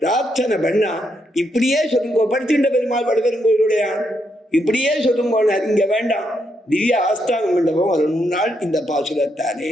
பண்ணா இப்படியே சொல்லுங்க, படுத்துட்ட பெருமாள் வடபெருங்கோயிலுடைய இப்படியே சொல்லுங்க, இங்க வேண்டாம் திவ்ய ஆஸ்தான மண்டபம் வரணும்னால் இந்த பாசுரத்தானே.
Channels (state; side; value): normal; both; correlation 0.79